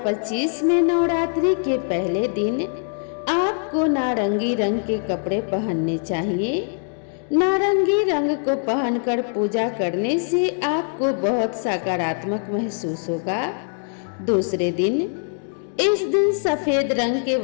में नवरात्रि के पहले दिन आपको नारंगी रंग के कपड़े पहनने चाहिए। नारंगी रंग को पहनकर पूजा करने से आपको बहुत सकारात्मक महसूस होगा। दूसरे दिन, इस दिन सफेद रंग के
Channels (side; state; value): right; silent; 64 dB below the other